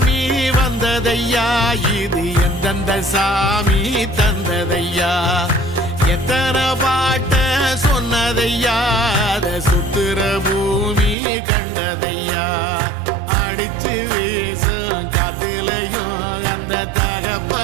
வந்ததையா, இது எந்தெந்த சாமி தந்ததையா, எத்தனை பாட்ட சொன்னதையா, அத சுத்துற பூமி கண்டதையா, அடிச்சு வீசும் காத்துலையும் அந்த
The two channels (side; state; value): left; drops out; at 11.2 s